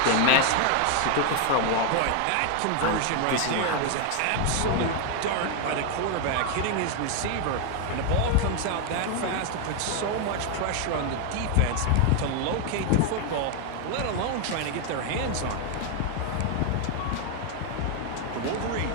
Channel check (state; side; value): different; both; correlation 0.01